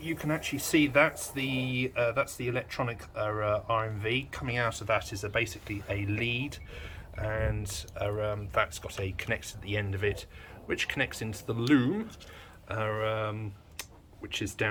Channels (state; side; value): identical; both; correlation 1.00